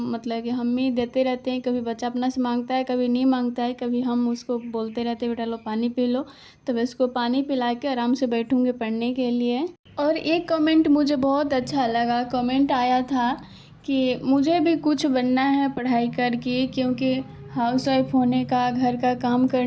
कि हम ही देते रहते हैं। कभी बच्चा अपना से मांगता है, कभी नहीं मांगता है, कभी हम उसको बोलते रहते हैं बेटा लो पानी पी लो। तो मैं उसको पानी पिला के आराम से बैठूँगी पढ़ने के लिए। और एक कमेंट मुझे बहुत अच्छा लगा, कमेंट आया था कि मुझे भी कुछ बनना है पढ़ाई करके, क्योंकि हाउसवाइफ होने का, घर का काम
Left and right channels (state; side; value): identical; both; correlation 1.00